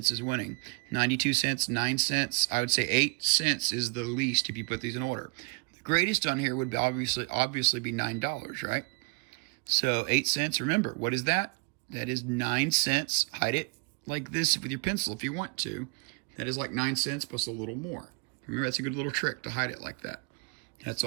is winning. 92 cents, 9 cents. I would say 8 cents is the least if you put these in order. The greatest on here would be obviously be $9, right? So 8 cents, remember, what is that? That is 9 cents. Hide it like this with your pencil if you want to. That is like 9 cents plus a little more. Remember, that's a good little trick to hide it like that. That's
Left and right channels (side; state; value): left; quieter; 33.2 dB